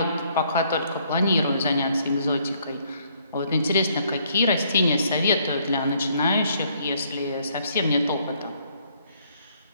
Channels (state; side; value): inverted; both; correlation -0.67